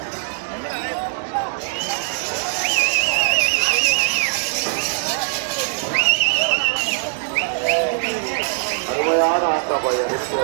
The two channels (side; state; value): left; silent; 65 dB below the other